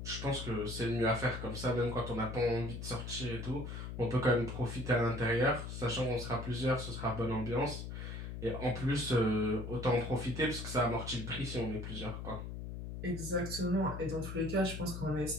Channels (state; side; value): noise; left; hum, 7 dB below the sound